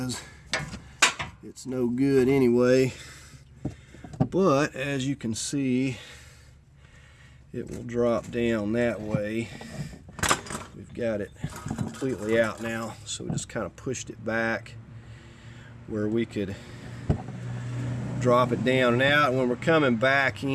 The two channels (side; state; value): both; identical; correlation 1.00